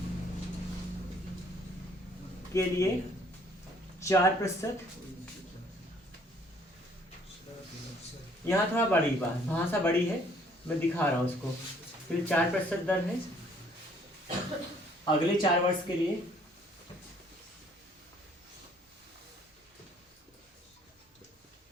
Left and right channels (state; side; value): normal; both; correlation 0.61